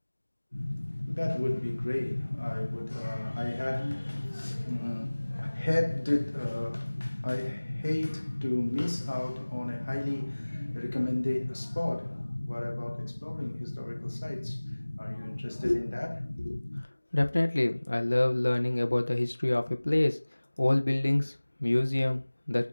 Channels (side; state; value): both; inverted; correlation -1.00